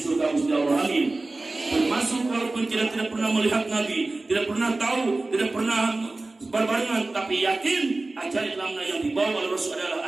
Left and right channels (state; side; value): quieter; left; 3.1 dB